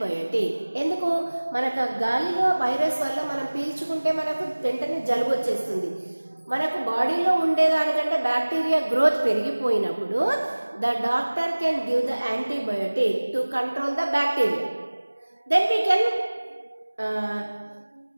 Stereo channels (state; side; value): inverted; both; correlation -1.00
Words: ఎందుకు? మనకు గాలిలో వైరస్ వల్ల మనం పీల్చుకుంటే మనకు వెంటనే జలుబు వచ్చేస్తుంది. మనకు బాడీలో ఉండేదానికంటే బ్యాక్టీరియా గ్రోత్ పెరిగిపోయినప్పుడు the doctor can give the antibiotic to control the bacteria. Then